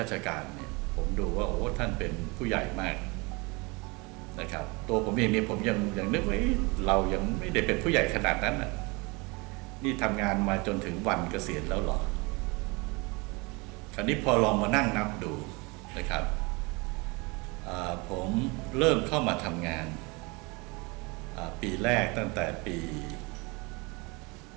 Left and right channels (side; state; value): left; quieter; 27.3 dB